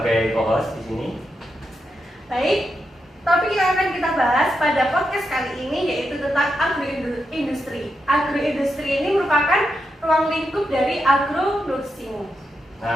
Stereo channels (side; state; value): both; normal; correlation 0.85